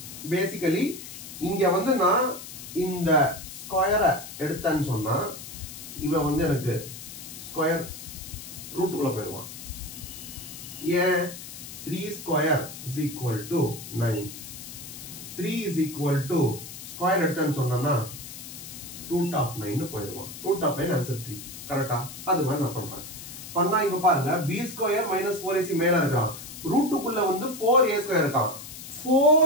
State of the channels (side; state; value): left; noise; hiss, 12 dB below the sound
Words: பேசிக்கலி இங்க வந்து நான் இந்த ஸ்கொயரை எடுத்தேன்னு சொன்னா இவன் வந்து எனக்கு ஸ்கொயர் ரூட்டுக்குள்ள போயிருவான். ஏன்? 3 square is equal to 9. 3 is equal to square எடுத்தேன்னு சொன்னா ரூட் ஆஃப் 9 போயிருவான். Root of 9 answer 3. கரெக்டா? அது மாதிரி நான் பண்றேன். பண்ணா இப்ப பாருங்க b ஸ்கொயர் மைனஸ் 4ac மேல இருக்கான், ரூட்டுக்குள்ள வந்து 4a ஸ்கொயர் இருக்கான்.